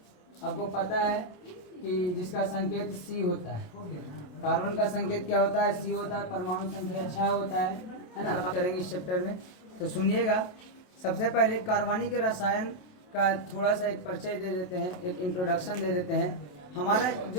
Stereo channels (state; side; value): late; right; 28 ms